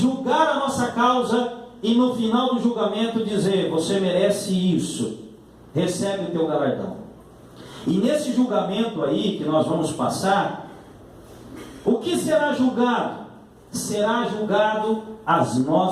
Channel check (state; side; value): identical; both; correlation 1.00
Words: a nossa causa e no final do julgamento dizer, você merece isso, recebe o teu galardão. E nesse julgamento aí que nós vamos passar, o que será julgado? Será julgado as